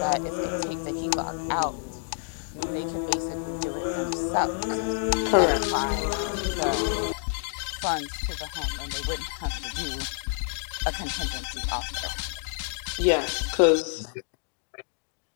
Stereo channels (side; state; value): right; silent; digital silence